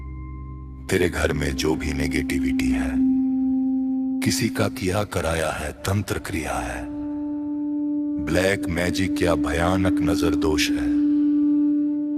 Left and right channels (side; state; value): both; identical; correlation 1.00